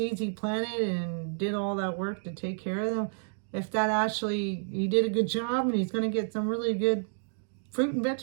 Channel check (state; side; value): silent; left; digital silence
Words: he planted and did all that work to take care of them, if that actually, he did a good job and he's going to get some really good fruit and